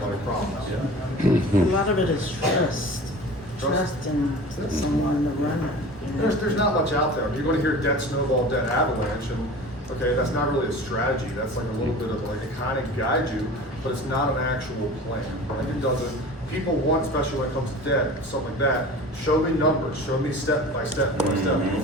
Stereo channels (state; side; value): normal; both; correlation 0.38